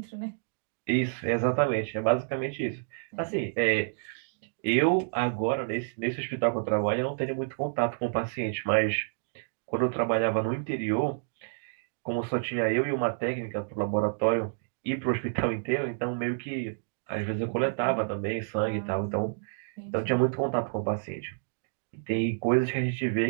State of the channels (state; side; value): silent; left; digital silence